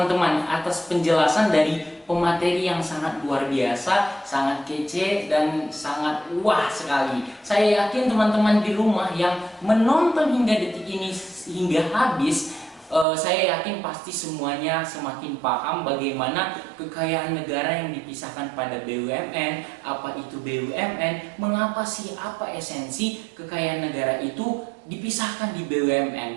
atas penjelasan dari pemateri yang sangat luar biasa, sangat kece dan sangat wah sekali. Saya yakin teman-teman di rumah yang menonton hingga detik ini hingga habis, saya yakin pasti semuanya semakin paham bagaimana kekayaan negara yang dipisahkan pada BUMN, apa itu BUMN, mengapa sih, apa esensi kekayaan negara itu dipisahkan di BUMN,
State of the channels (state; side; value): drops out; left; at 13.1 s